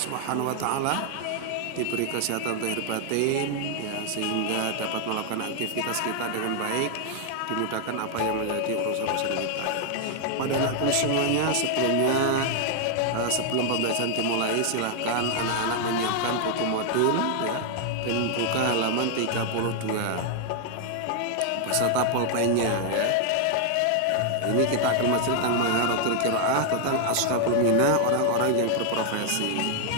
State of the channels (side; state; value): both; different; correlation 0.00